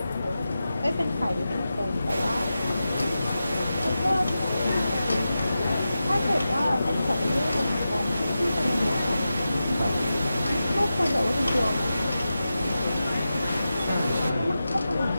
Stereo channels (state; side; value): inverted; both; correlation -0.92